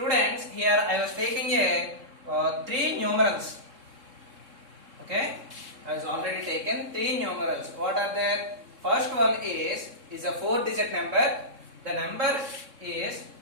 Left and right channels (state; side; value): late; left; 3.6 ms